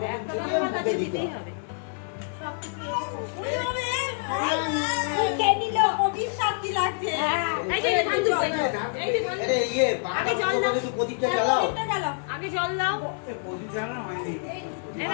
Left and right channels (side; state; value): right; silent; 60 dB below the other